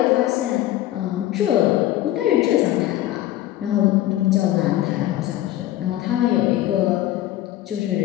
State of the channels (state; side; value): quieter; right; 14.3 dB